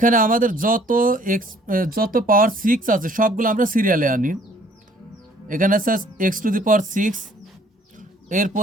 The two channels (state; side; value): normal; both; correlation 0.58